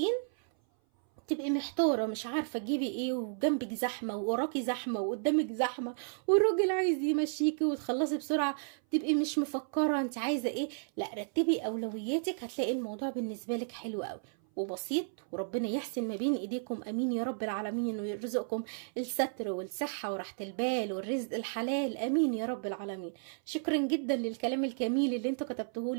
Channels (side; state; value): left; silent; 56 dB below the other